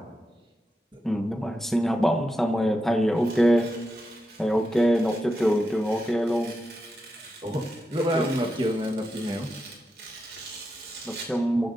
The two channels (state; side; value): normal; both; correlation 0.88